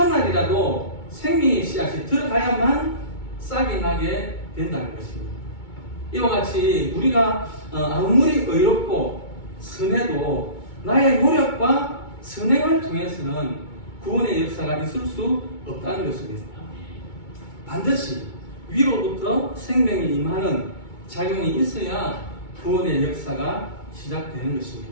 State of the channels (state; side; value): late; right; 2.2 ms